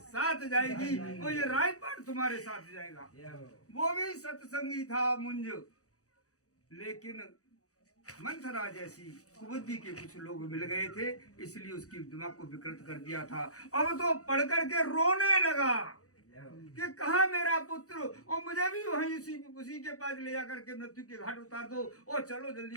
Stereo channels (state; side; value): late; right; 0.66 ms